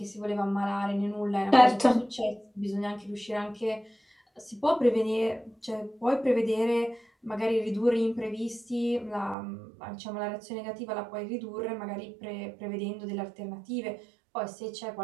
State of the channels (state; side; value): drops out; left; at 9.3 s